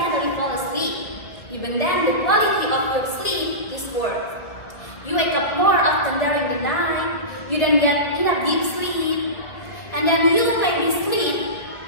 fall asleep. Even then, the quality of your sleep is poor. You wake up more often during the night, you don't get enough deep sleep, and then you maybe sleep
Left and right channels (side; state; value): right; late; 2.0 ms